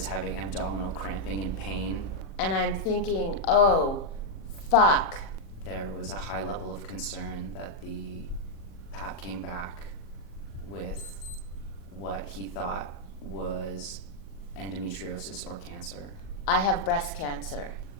having abdominal cramping and pain. And I'm thinking, oh, fuck. There was a high level of concern that the PAP came back with what he thought was endometriosis or cancer. I have breast cancer.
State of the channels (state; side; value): late; right; 37 ms